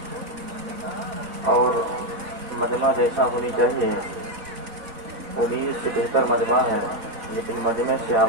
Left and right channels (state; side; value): late; left; 4.1 ms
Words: اور مجمع جیسا ہونی چاہیے امید سے بہتر مجمع ہے لیکن مجمع سے